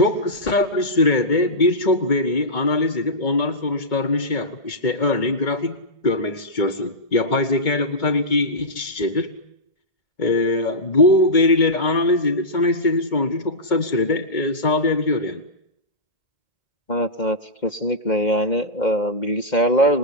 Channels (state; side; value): late; right; 2.2 ms